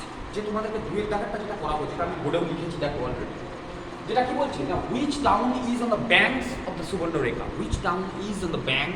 যে তোমাদেরকে দুয়ের দাগেরটা যেটা করাবো, যেটা আমি বোর্ডেও লিখেছি দেখো অলরেডি, যেটা কি বলছে না, which town is on the banks of the Subarnarekha, which town is on the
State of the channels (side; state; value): both; identical; correlation 1.00